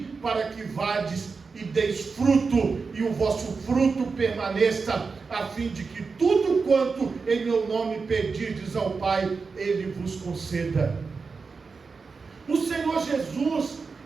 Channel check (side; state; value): left; quieter; 4.7 dB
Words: para que vades e deis fruto, e o vosso fruto permaneça, a fim de que tudo quanto em meu nome pedirdes ao Pai, Ele vos conceda. O Senhor Jesus,